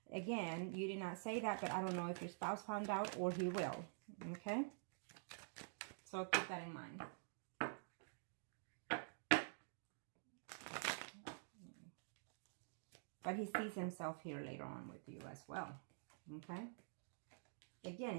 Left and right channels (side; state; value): left; silent; digital silence